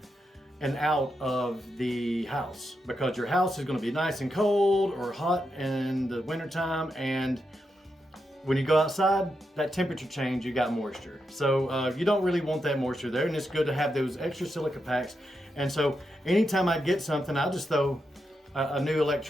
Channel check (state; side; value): normal; both; correlation 0.85